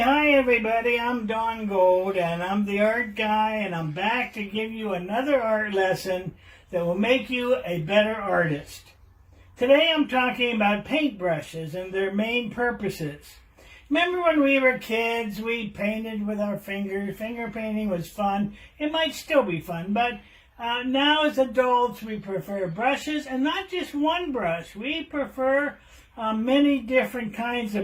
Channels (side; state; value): both; identical; correlation 1.00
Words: everybody, I'm Don Gold and I'm the art guy and I'm back to give you another art lesson that will make you a better artist. Today I'm talking about paintbrushes and their main purposes. Remember when we were kids, we painted with our fingers. Finger painting was fun. It might still be fun, but now as adults we prefer brushes, and not just one brush. We prefer many different kinds